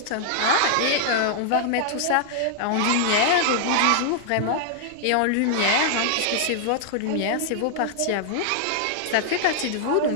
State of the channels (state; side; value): different; both; correlation -0.01